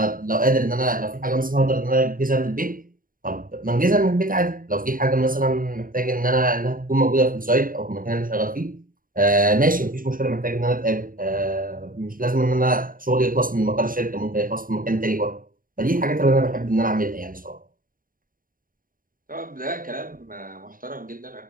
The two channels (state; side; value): late; left; 0.41 ms